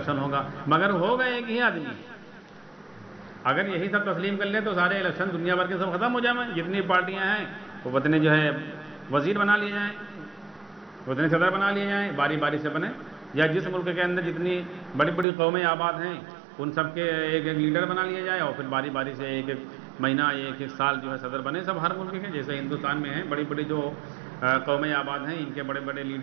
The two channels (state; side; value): drops out; left; at 15.2 s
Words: ہوگا، مگر ہوگا ایک ہی آدمی۔ اگر یہی سب تسلیم کر لیں تو سارے الیکشن دنیا بھر کے سب ختم ہو جائیں، جتنی پارٹیاں ہیں وہ اتنے جو ہے وزیر بنا لیے جائیں، اتنے صدر بنا لیے جائیں، باری باری سے بنے، یا جس ملک کے اندر جتنی بڑی بڑی قومیں آباد ہیں ان سب کے ایک ایک لیڈر بنا لیا جائے، اور پھر باری باری سے ایک ایک مہینہ ایک ایک سال جو ہے صدر بنے سب ہر ملک کے، جیسے ہندوستان میں ہیں بڑی بڑی جو قومیں آباد ہیں، ان کے بڑے بڑے